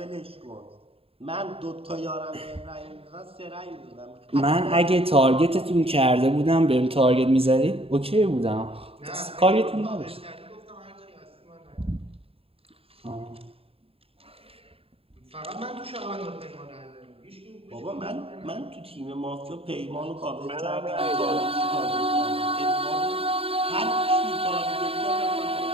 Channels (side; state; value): left; late; 0.27 ms